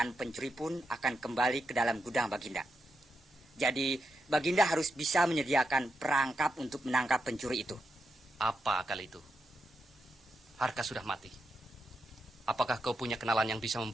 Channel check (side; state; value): both; normal; correlation 0.85